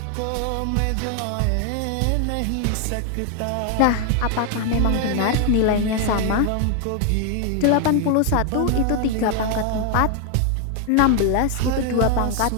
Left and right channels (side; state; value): both; different; correlation 0.00